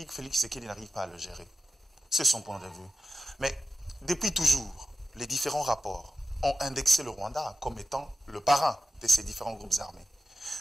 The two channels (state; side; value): normal; both; correlation 0.93